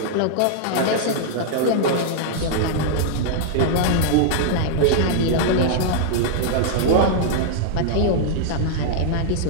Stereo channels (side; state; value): both; different; correlation -0.01